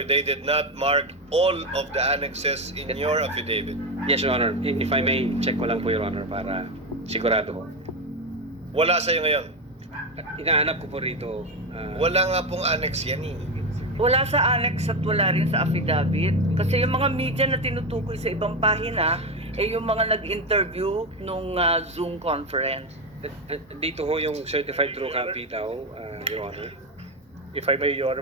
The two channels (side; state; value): both; normal; correlation 0.13